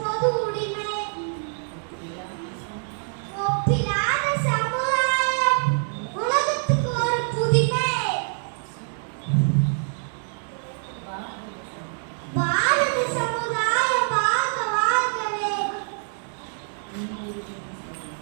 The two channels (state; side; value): silent; left; 62 dB below the other